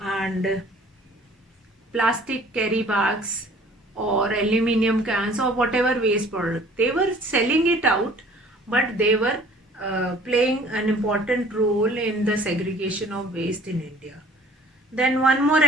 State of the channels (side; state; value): both; normal; correlation 0.52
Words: and plastic carry bags or aluminium cans or whatever waste product. They were selling it out, but they were playing an important role in the segregation of waste in India. Then one more